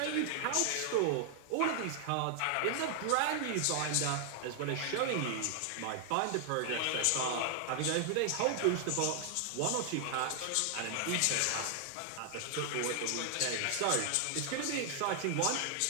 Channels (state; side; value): different; both; correlation 0.00